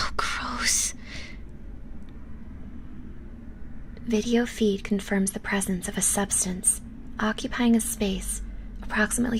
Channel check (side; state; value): both; identical; correlation 1.00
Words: gross. Video feed confirms the presence of a substance occupying a space approximately